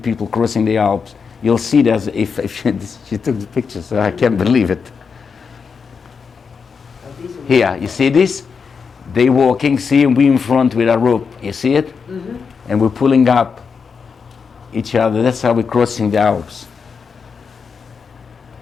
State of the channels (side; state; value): right; quieter; 5.7 dB